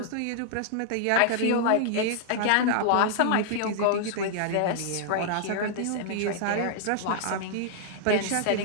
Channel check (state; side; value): different; both; correlation -0.01